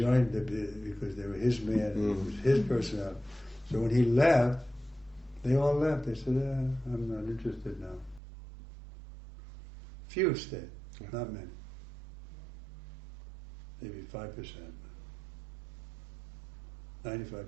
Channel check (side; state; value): left; drops out; at 8.2 s